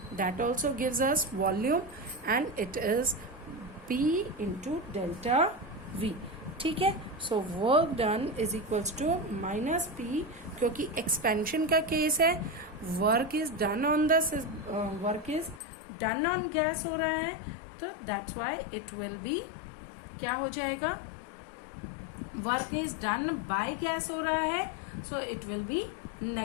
that also gives us volume, and it is P into delta V. ठीक है. So work done is equals to minus P, क्योंकि एक्सपेंशन का केस है, work is done on the work is done on gas हो रहा है, तो that's why it will be क्या हो जाएगा? Work is done by gas हो रहा है, so it will be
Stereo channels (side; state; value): right; drops out; at 15.6 s